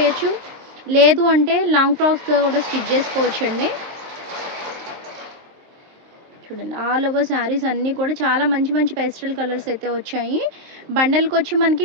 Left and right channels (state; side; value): late; left; 23 ms